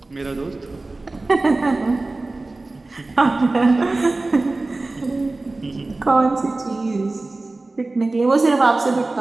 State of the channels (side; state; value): left; quieter; 3.2 dB